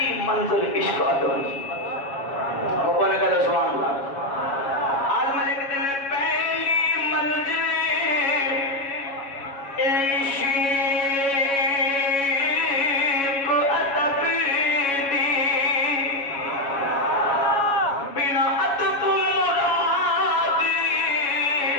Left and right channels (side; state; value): right; late; 7.2 ms